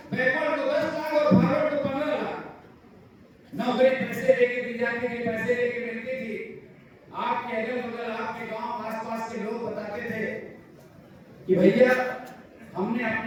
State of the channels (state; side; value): identical; both; correlation 1.00